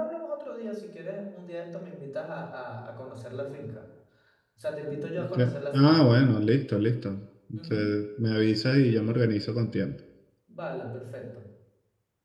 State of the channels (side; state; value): both; identical; correlation 1.00